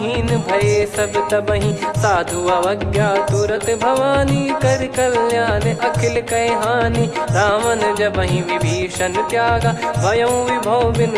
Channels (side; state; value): both; identical; correlation 1.00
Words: भय सब तबहि। साधु अवज्ञा तुरत भवानी कर कल्याण अखिल कह हानि। रावण जबहि विभीषण त्यागा भयउ विभव